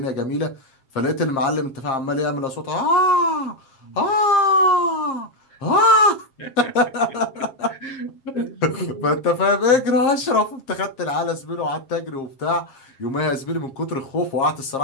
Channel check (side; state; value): right; late; 7.5 ms